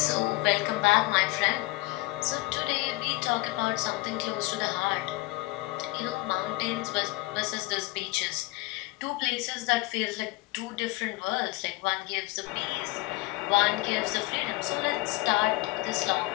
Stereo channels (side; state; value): right; quieter; 21.6 dB